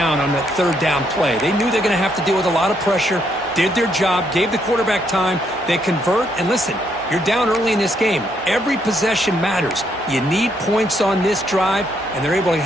on that third down play. They knew they're going to have to deal with a lot of pressure, did their job, gave the quarterback time. They convert, and listen, you're down early in this game. Every possession matters. You need points on this drive, and they're able to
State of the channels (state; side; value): normal; both; correlation 0.74